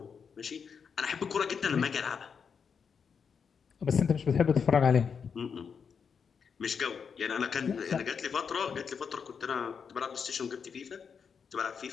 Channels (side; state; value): right; quieter; 6.4 dB